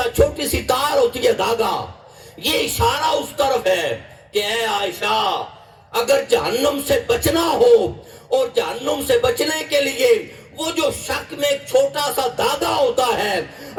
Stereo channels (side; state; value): both; identical; correlation 1.00